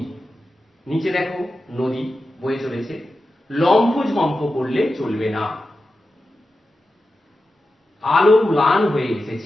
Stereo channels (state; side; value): normal; both; correlation 0.92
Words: নিচে দেখো নদী বয়ে চলেছে। লম্ফ ঝম্প করলে চলবে না। আলো ম্লান হয়ে